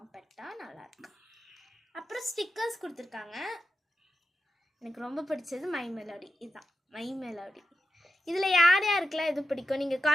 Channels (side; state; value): both; normal; correlation 0.90